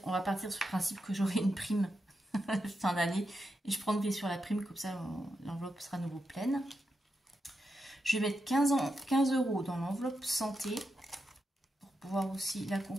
partir sur le principe que j'aurai une prime fin d'année. Et je prendrai sur la prime, comme ça l'enveloppe sera à nouveau pleine. Je vais mettre 15 € dans l'enveloppe santé. Pouvoir aussi la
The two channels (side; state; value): both; normal; correlation 0.86